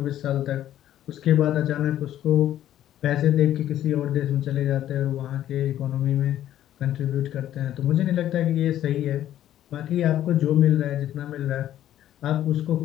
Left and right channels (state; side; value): quieter; right; 12.1 dB